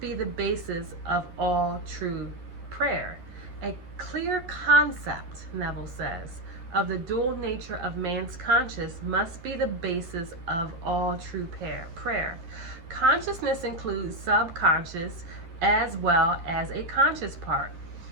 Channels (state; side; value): late; left; 11 ms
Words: the basis of all true prayer. A clear concept, Neville says, of the dual nature of man's conscious must be the basis of all true prayer. Consciousness includes subconscious as well as a conscious part.